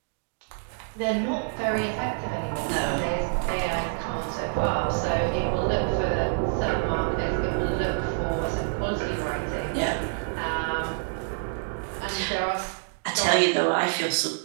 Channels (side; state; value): left; silent; digital silence